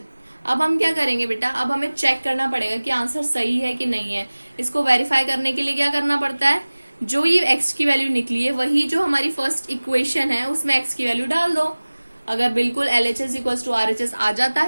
अब हम क्या करेंगे बेटा, अब हमें चेक करना पड़ेगा कि आंसर सही है कि नहीं है। इसको वेरीफाई करने के लिए क्या करना पड़ता है, जो ये x की वैल्यू निकली है वही जो हमारी फर्स्ट इक्वेशन है उसमें x की वैल्यू डाल दो। अगर बिल्कुल LHS = RHS आ जाता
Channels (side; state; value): both; inverted; correlation -1.00